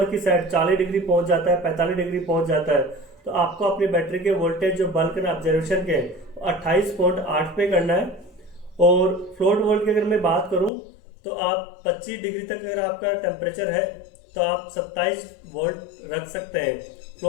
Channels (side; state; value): right; drops out; at 10.7 s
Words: की साइड 40 डिग्री पहुंच जाता है, 45 डिग्री पहुंच जाता है, तो आपको अपनी बैटरी के वोल्टेज जो बल्क एंड ऑब्जर्वेशन के 28.8 पे करना है। और फ्लोट वोल्ट की अगर मैं बात करूं तो आप 25 डिग्री तक अगर आपका टेम्परेचर है तो आप 27 वोल्ट रख सकते हैं।